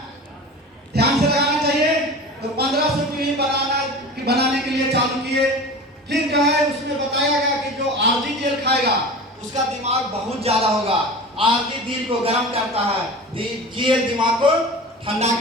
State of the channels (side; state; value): both; normal; correlation 0.34